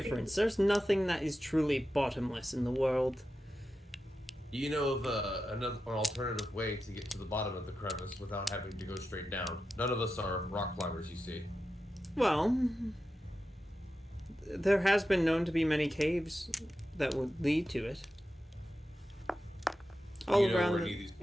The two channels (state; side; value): normal; both; correlation 0.91